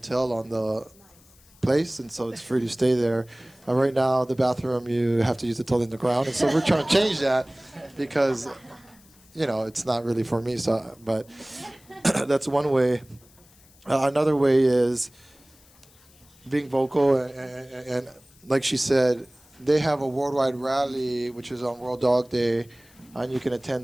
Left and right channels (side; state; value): left; noise; hiss, 28 dB below the sound